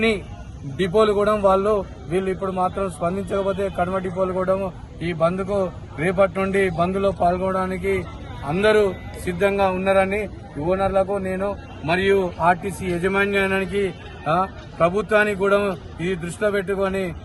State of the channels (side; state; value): both; identical; correlation 1.00